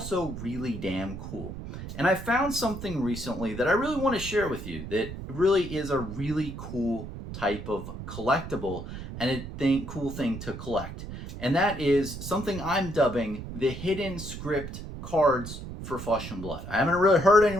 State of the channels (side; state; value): right; noise; rumble, 9 dB below the sound